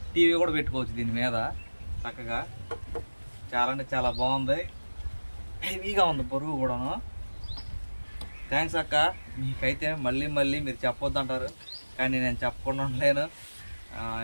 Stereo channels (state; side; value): inverted; both; correlation -1.00